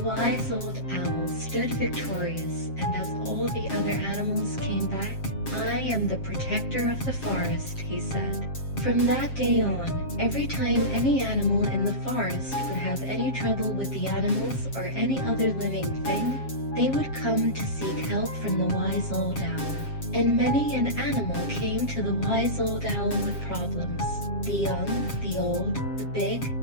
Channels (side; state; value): right; late; 7.5 ms